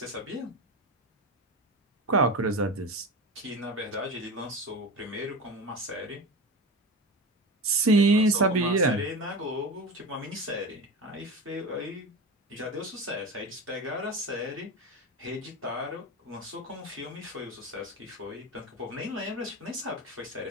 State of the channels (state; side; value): normal; both; correlation 0.26